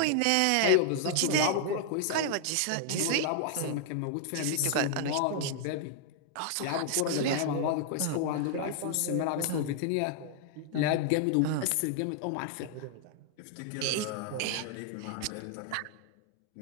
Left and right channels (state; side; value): different; both; correlation 0.00